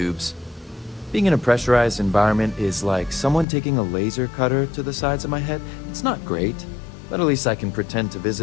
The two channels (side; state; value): right; drops out; at 3.5 s